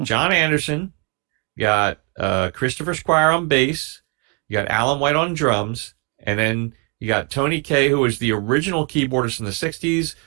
John Anderson, you got Christopher Squire on bass, you got Alan White on drums, and then you got Tony Kaye, who was the original keyboardist in the '60s,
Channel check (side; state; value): left; quieter; 31.7 dB